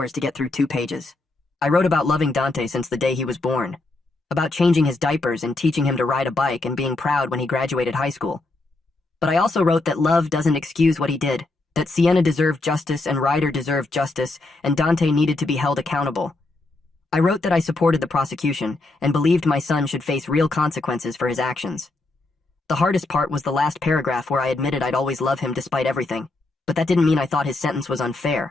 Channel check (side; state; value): right; quieter; 3.1 dB